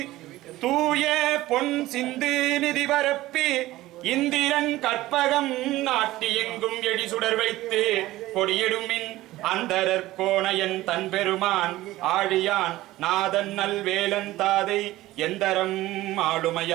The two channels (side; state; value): left; quieter; 16.8 dB